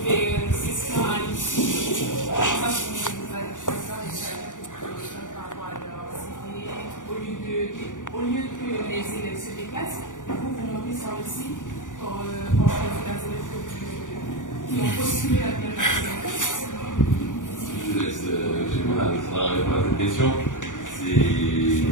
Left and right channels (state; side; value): late; right; 0.87 ms